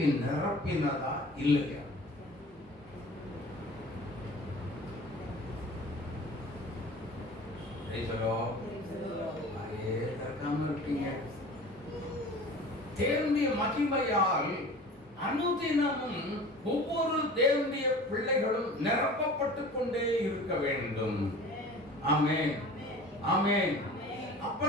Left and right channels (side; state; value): both; normal; correlation 0.41